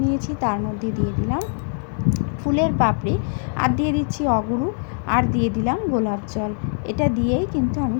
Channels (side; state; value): right; silent; 58 dB below the other